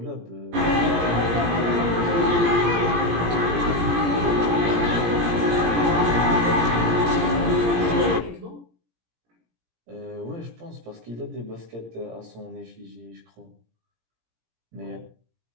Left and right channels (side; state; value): left; late; 17 ms